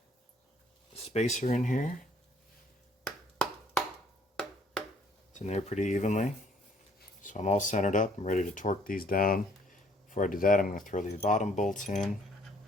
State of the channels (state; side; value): normal; both; correlation 0.62